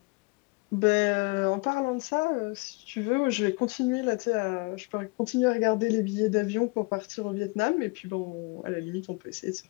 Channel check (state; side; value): quieter; right; 27.9 dB